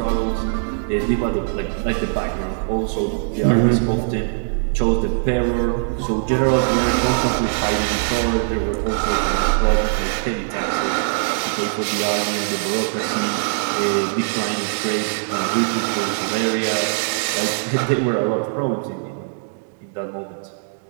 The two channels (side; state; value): left; silent; digital silence